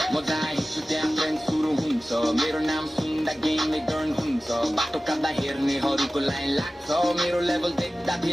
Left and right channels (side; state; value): both; normal; correlation 0.96